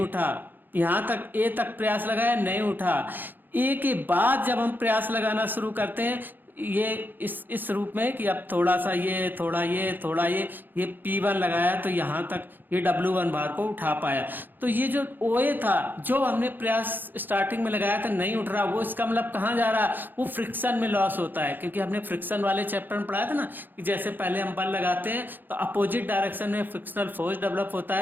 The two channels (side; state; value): left; late; 0.090 ms